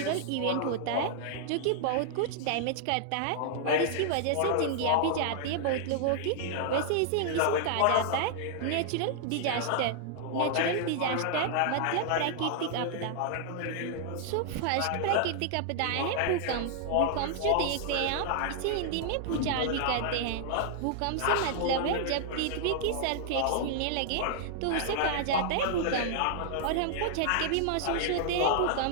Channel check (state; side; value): different; both; correlation -0.01